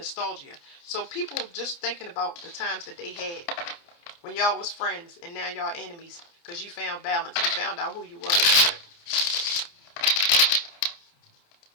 So people just thinking about the times that they had when y'all was friends, and now y'all enemies because you found balance. You found out who you was.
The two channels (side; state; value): right; late; 29 ms